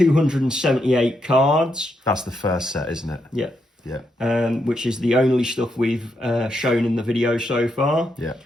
cards. That's the first set, isn't it? Yeah. Yeah. Which is the only stuff we've shown in the video so far. Yeah.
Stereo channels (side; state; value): both; normal; correlation 0.81